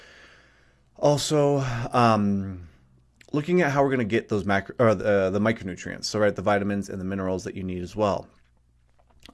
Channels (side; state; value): both; identical; correlation 1.00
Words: also looking at how we're going to get those the micronutrients. So, right, the vitamins and the minerals that you need as well.